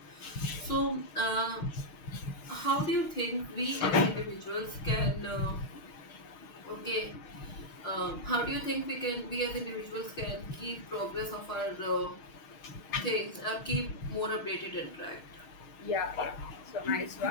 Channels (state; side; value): late; right; 6.3 ms